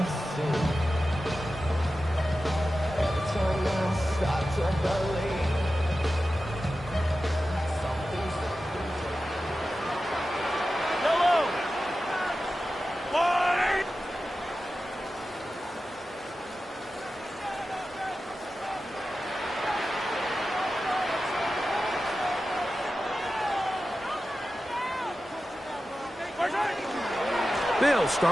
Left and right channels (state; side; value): normal; both; correlation 0.93